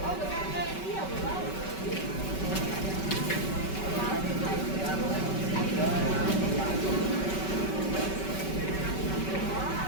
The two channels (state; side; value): late; right; 5.2 ms